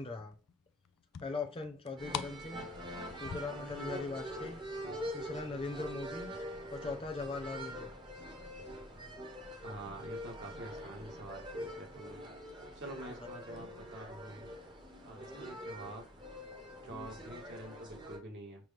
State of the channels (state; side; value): normal; both; correlation 0.54